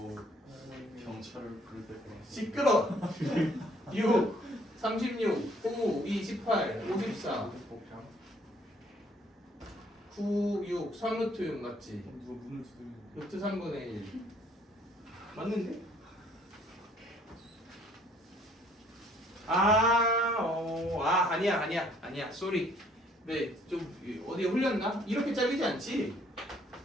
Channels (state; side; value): normal; both; correlation 0.62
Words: 경찰을 부를 때 시끄러! 6, 36, 9, 2, 18, 54 9, 6, 3루트 6 맞지? 누가 문을 두드리는 루트 3분의 1 맞는데? 아니야 쏘리. 네, 좀 어디에 흘렸나? 이렇게 잘리지 않지?